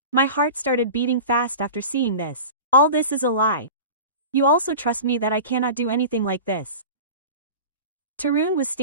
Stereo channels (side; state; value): both; inverted; correlation -0.33